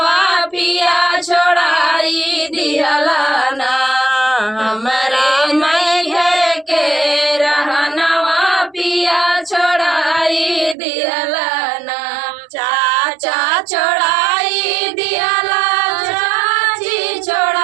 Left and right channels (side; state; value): left; drops out; at 10.8 s